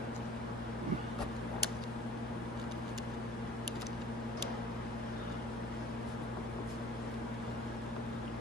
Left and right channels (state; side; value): normal; both; correlation 0.48